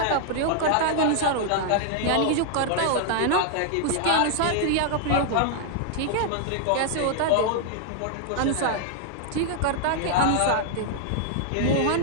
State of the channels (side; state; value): both; different; correlation 0.00